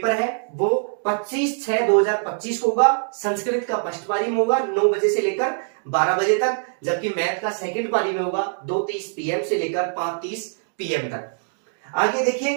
है वो 25/6/2025 को होगा। संस्कृत का फर्स्ट पारी में होगा 9 बजे से लेकर 12 बजे तक, जबकि मैथ का सेकंड पारी में होगा 2:30 PM से लेकर 5:30 PM तक। आगे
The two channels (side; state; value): left; silent; digital silence